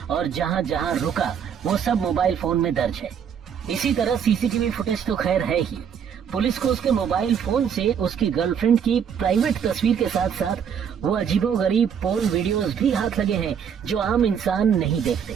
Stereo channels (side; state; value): left; quieter; 7.7 dB